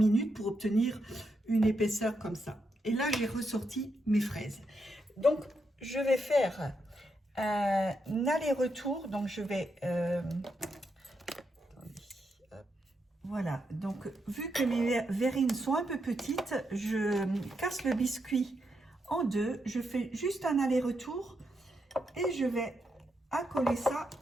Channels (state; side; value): normal; both; correlation 0.82